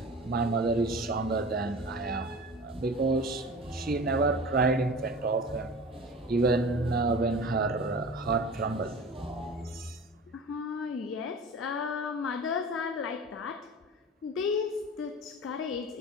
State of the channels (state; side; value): normal; both; correlation 0.37